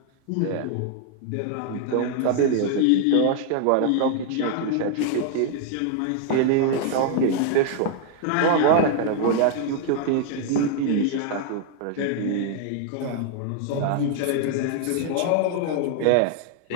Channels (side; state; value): both; different; correlation 0.00